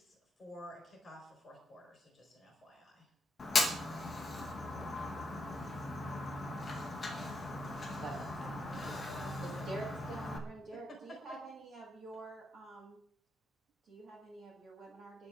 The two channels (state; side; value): normal; both; correlation 0.82